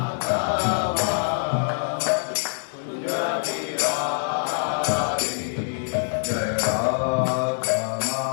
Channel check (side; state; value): right; silent; digital silence